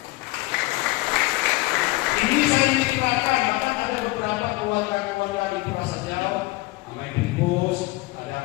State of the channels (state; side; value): quieter; right; 21.5 dB